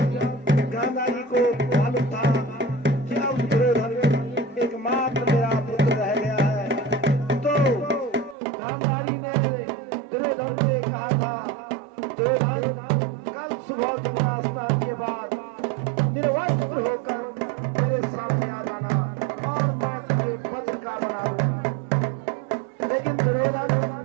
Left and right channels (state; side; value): drops out; left; at 8.3 s